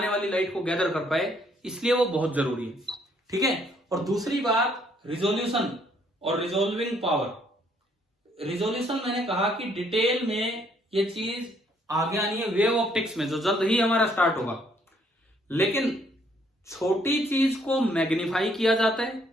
वाली लाइट को गैदर कर पाए, इसलिए वो बहुत जरूरी है। ठीक है। और दूसरी बात रिजोल्यूशन और रिजोल्विंग पावर। रिजोल्यूशन मैंने कहा कि डिटेल में ये चीज आगे आनी है वेव ऑप्टिक्स में, जो जल्द ही हमारा स्टार्ट होगा। लेकिन छोटी चीज को मैग्नीफाई किया जाता है,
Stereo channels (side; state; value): both; normal; correlation 0.67